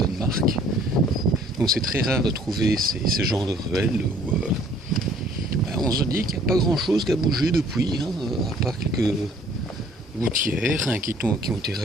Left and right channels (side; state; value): both; normal; correlation 0.57